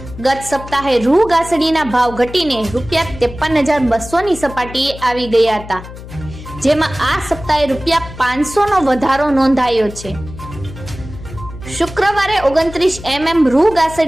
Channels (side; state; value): left; noise; hum, 14 dB below the sound